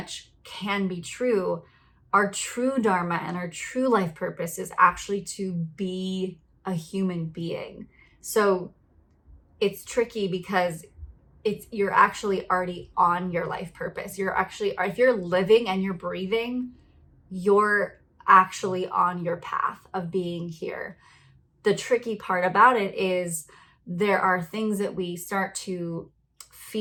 can be true, our true dharma and our true life purpose is actually to be a human being. So it's tricky because you're actually already on your life purpose. You're actually, if you're living and you're breathing, you're actually on your path of being here. The tricky part about it is there are things that we start to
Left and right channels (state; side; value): identical; both; correlation 1.00